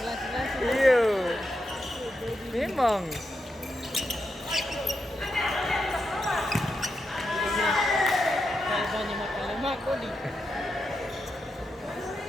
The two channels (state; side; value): normal; both; correlation 0.85